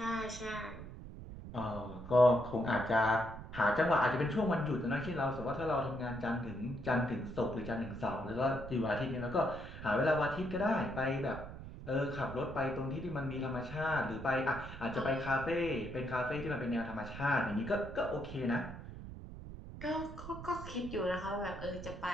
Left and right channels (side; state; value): right; noise; rumble, 11 dB below the sound